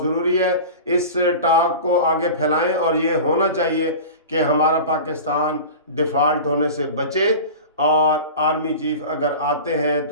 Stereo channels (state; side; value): inverted; both; correlation -0.33